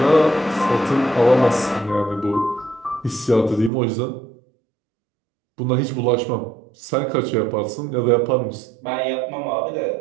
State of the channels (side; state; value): left; drops out; at 3.7 s